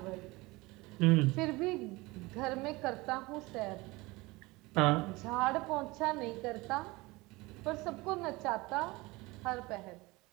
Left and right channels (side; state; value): left; quieter; 22.4 dB